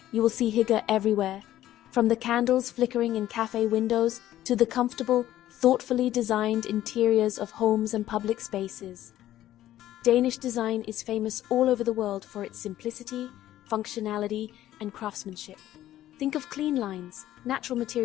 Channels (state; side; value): quieter; right; 13.3 dB